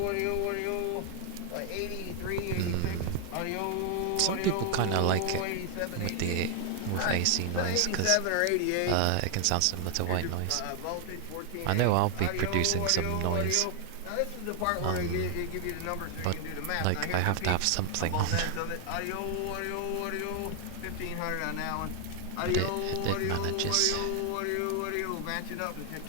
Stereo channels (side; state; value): both; different; correlation 0.00